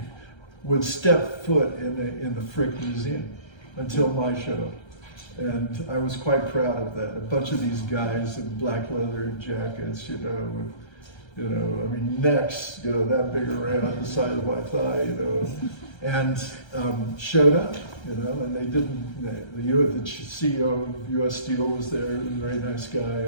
would step foot in the Frick Museum until my show. And I was quite proud of that. A bunch of these guys in black leather jackets, with necks, that big around the side of my thigh, and showed up, and they didn't, the CEO of U.S. Steel was there, a very nice guy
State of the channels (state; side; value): late; right; 1.3 ms